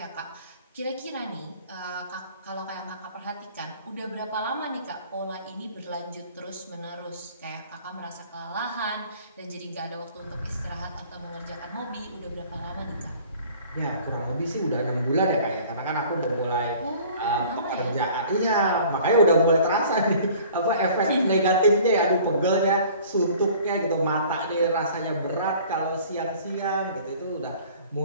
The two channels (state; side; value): inverted; both; correlation -0.49